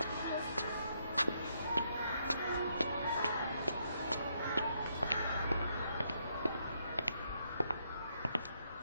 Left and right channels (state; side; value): inverted; both; correlation -0.75